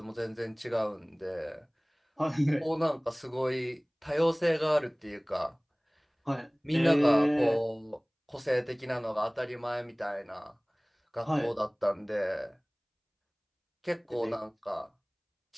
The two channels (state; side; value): identical; both; correlation 1.00